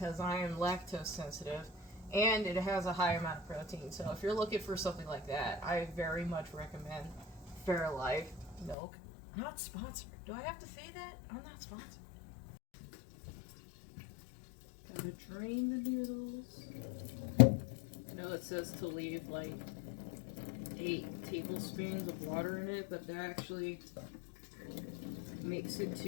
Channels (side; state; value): right; drops out; at 8.8 s